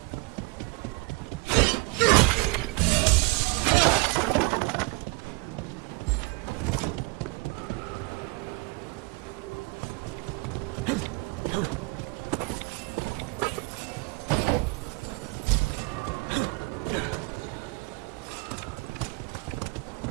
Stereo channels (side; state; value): left; quieter; 25.3 dB